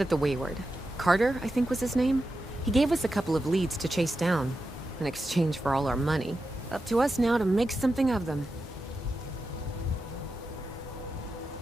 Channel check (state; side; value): normal; both; correlation 0.89